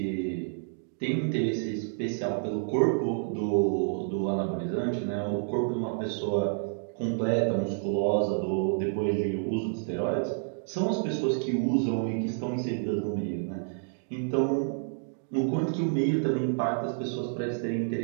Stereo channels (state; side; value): silent; left; digital silence